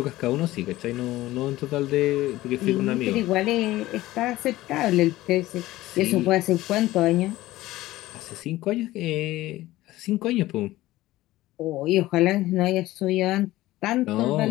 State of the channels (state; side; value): quieter; right; 16.9 dB